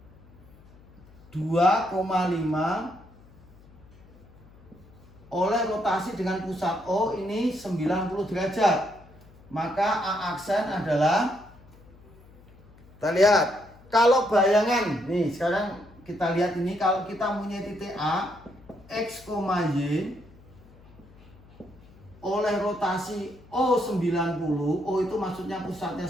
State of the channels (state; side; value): noise; left; hum, 24 dB below the sound